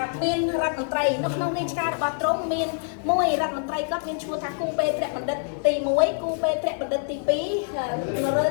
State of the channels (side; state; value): right; silent; 62 dB below the other